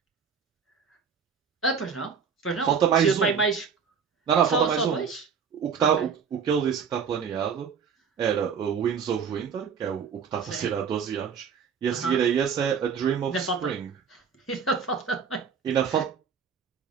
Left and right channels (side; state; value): left; quieter; 6.5 dB